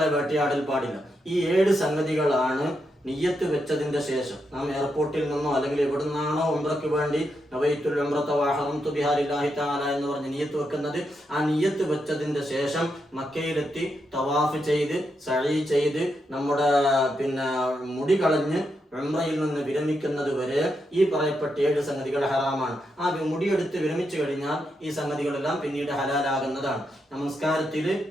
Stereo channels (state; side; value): normal; both; correlation 0.83